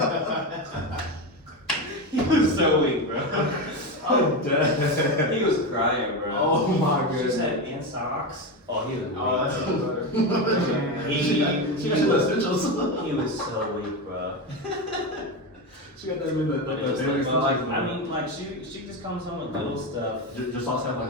He was so weak, bro. I'm dead. He was crying, bro. Oh my She goodness. said, and socks. Oh, he was weak. Oh, that's even better. She got you the essentials. He was so weak, bro. She got that in the But it was daily like, essentials. I mean, like she just comes home with little stuff. Your socks have like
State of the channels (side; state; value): both; normal; correlation 0.16